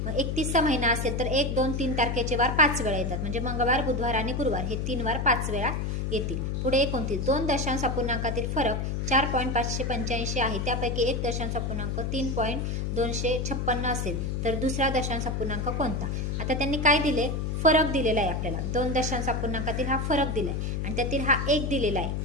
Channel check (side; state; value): left; noise; hum, 1 dB below the sound